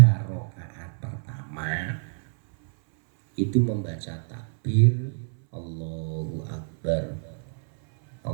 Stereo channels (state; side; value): silent; left; 61 dB below the other